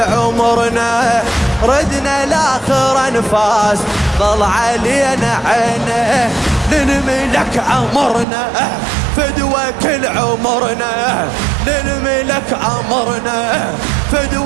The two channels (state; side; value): drops out; left; at 8.2 s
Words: ردنا لاخر انفاس ضل علينا عينه، للملك امرنا فدوى كل عمرنا، للملك امرنا